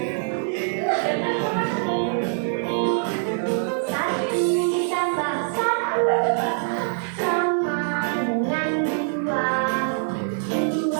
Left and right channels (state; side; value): silent; left; 55 dB below the other